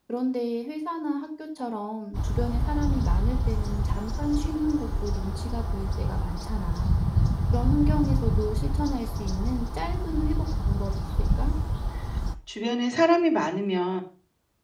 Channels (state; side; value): identical; both; correlation 1.00